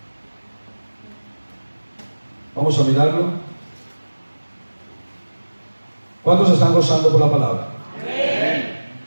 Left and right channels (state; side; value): inverted; both; correlation -1.00